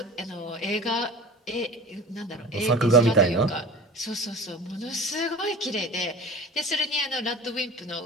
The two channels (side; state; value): both; normal; correlation 0.38